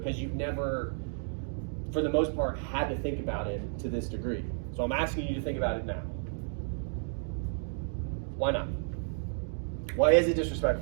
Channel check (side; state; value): left; silent; digital silence